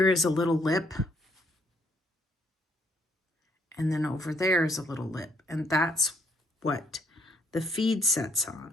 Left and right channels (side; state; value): both; normal; correlation 0.69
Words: is a little lip. And then over there is a little lip. And that's what the feed sets